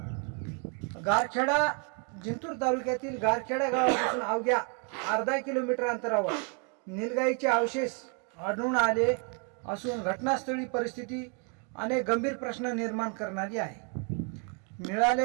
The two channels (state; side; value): quieter; left; 36.9 dB